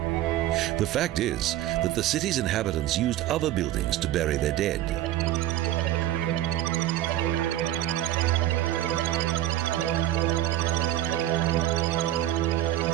The fact is that the city's inhabitants used other buildings to bury their dead.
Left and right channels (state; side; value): quieter; left; 13.3 dB